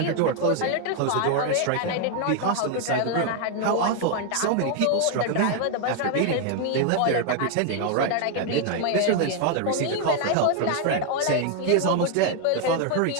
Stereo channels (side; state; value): both; different; correlation 0.01